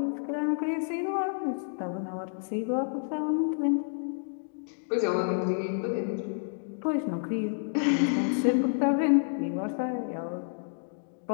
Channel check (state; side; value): silent; right; digital silence